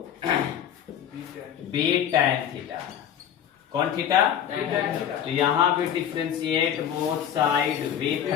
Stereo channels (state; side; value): quieter; right; 9.5 dB